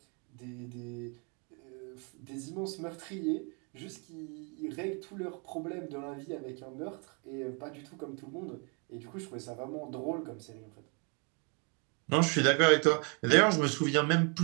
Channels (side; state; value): left; quieter; 36.0 dB